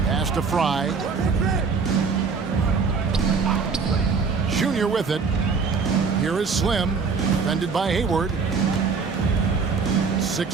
Pass to Fry. Junior with it. Here is Slim. Defended by Hayward.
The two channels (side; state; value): left; quieter; 5.1 dB